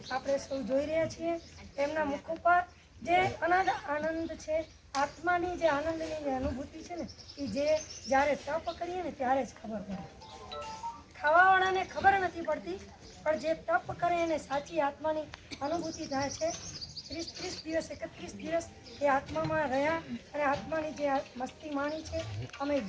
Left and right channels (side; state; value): both; identical; correlation 1.00